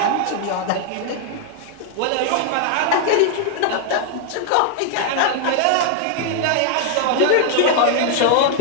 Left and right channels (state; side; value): different; both; correlation 0.00